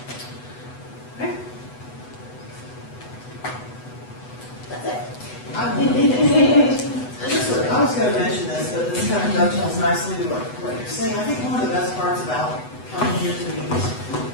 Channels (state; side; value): late; right; 8.0 ms